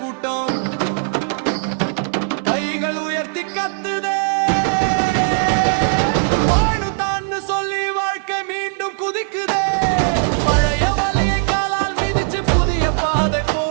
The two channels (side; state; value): left; silent; digital silence